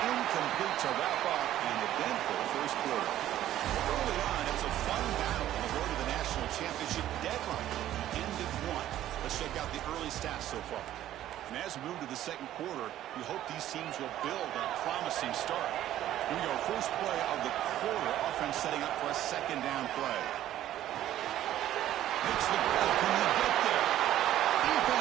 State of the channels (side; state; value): left; quieter; 12.8 dB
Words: incomplete to wrap up an eventful first quarter. Early on, it was a fun battle on the road to the national championship deadline. Ended 1. Let's check out the early stats so far. And as we move to the second quarter, we hope these teams will build a promising start. Here we go, first play of the quarter. Offense setting up for a 2nd down play. Makes the play. Can you get there?